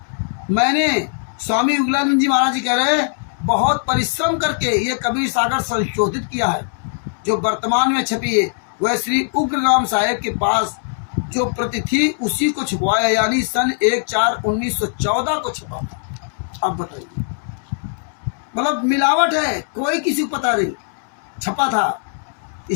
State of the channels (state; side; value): silent; right; 66 dB below the other